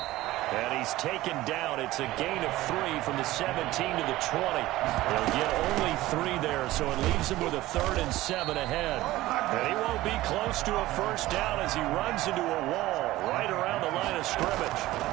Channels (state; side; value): quieter; left; 17.0 dB